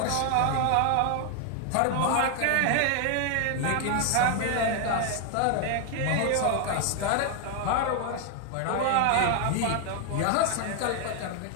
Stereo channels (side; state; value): both; different; correlation 0.00